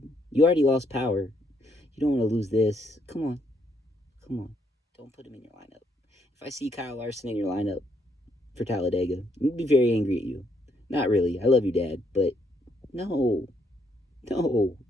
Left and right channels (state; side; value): normal; both; correlation 0.73